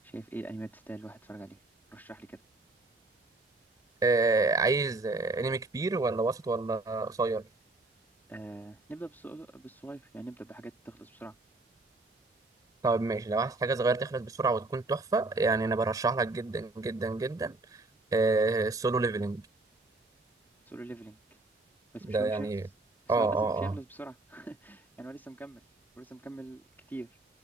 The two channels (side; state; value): left; quieter; 3.1 dB